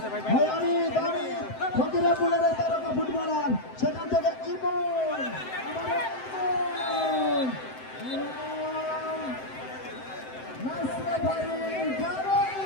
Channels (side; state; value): right; late; 7.8 ms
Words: অমিত। ফকিরাপুরের তারকা ফুটবলার, সেখান থেকে ইমন, নাসরেফারি